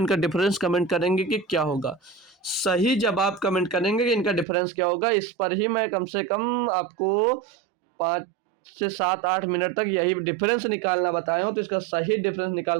डिफरेंस कमेंट करेंगे कि क्या होगा। सही जवाब कमेंट करेंगे कि इनका डिफरेंस क्या होगा। इस पर ही मैं कम से कम आपको 5 से 7 8 मिनट तक यही डिफरेंस निकालना बताया हूँ, तो इसका सही डिफरेंस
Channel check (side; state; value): left; drops out; at 4.5 s